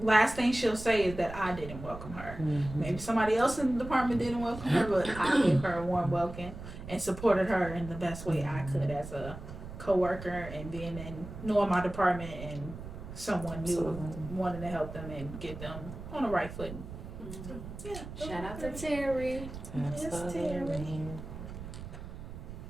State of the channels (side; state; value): right; noise; rumble, 11 dB below the sound